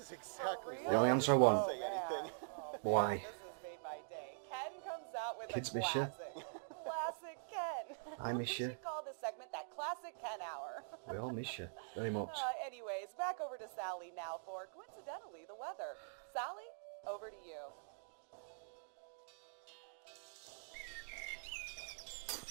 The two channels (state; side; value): silent; left; digital silence